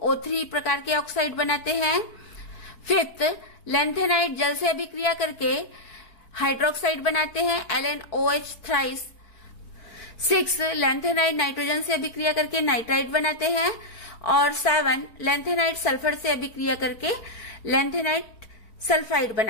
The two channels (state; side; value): late; right; 4.6 ms